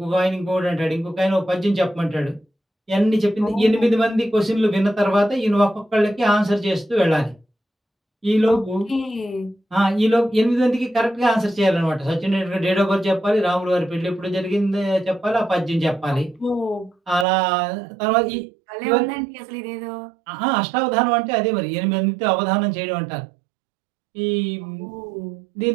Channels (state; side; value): drops out; left; at 17.2 s